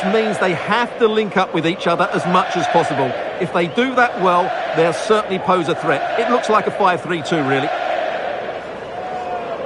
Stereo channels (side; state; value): both; identical; correlation 1.00